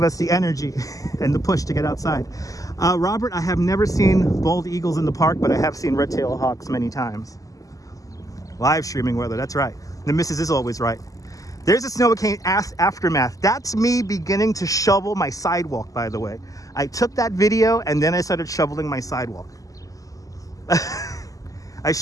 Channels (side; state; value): right; late; 0.17 ms